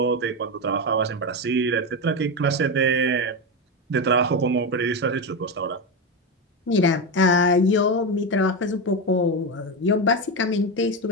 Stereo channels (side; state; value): both; normal; correlation 0.14